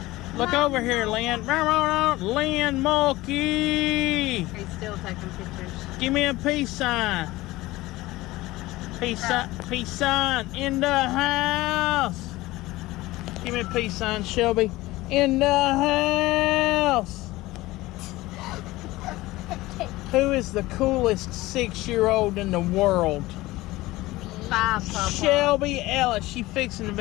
Look over here, Lynn. Lynn Mulkey. He's still taking pictures. Give me a peace sign. Peace sign in the house. Give me a peace sign, Shelby. In the house. Who is the coolest 6-year-old in the world? 5, Papa. Shelby Ellis. She fixing to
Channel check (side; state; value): right; quieter; 18.8 dB